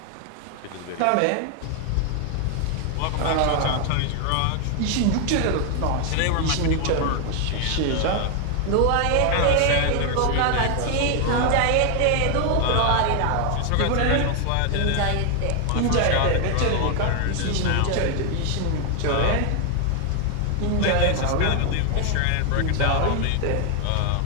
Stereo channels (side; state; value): both; different; correlation 0.00